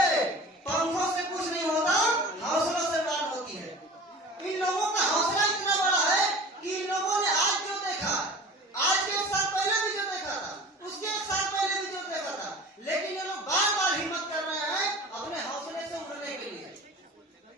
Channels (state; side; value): normal; both; correlation 0.40